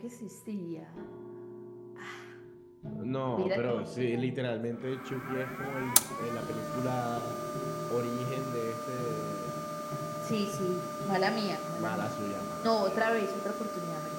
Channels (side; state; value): both; identical; correlation 1.00